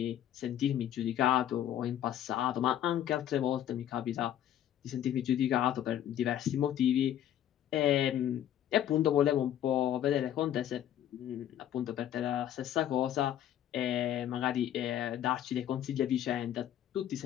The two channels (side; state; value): right; quieter; 11.1 dB